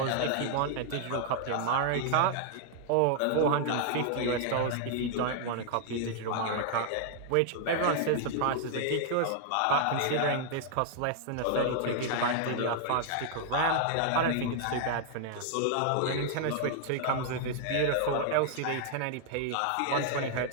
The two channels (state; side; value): different; both; correlation -0.01